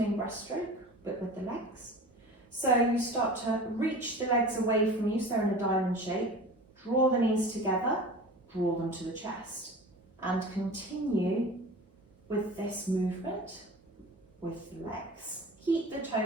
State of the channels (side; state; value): both; normal; correlation 0.37